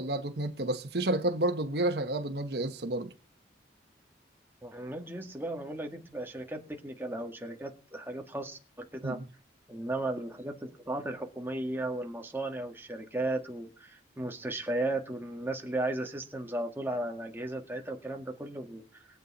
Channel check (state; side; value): normal; both; correlation 0.47